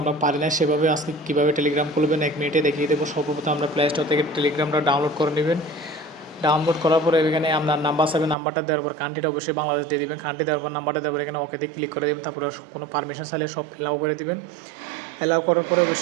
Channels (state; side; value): drops out; left; at 8.3 s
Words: আমরা পারি না সেভাবে। আজকে কীভাবে টেলিগ্রাম খুলবেন 1 মিনিটে দেখিয়ে দেবো। সর্বপ্রথম আমরা প্লে স্টোর থেকে টেলিগ্রামটা ডাউনলোড করে নেবেন। ডাউনলোড করার পরে এখানে আপনার নাম্বার চাইবে, নাম্বারটা দেওয়ার পর কান্ট্রিটা অবশ্যই বাংলাদেশ দিয়ে দেবেন। কান্ট্রি দেওয়ার পর নাম্বারটা দেওয়ার পর এখানে ওকেতে ক্লিক করে দেবেন। তারপরে কোনো পারমিশন চাইলে সব অ্যালাউ করে দেবেন। অ্যালাউ করার পরে